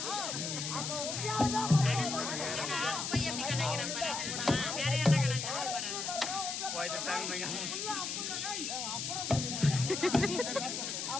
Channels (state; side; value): noise; left; hiss, 3 dB below the sound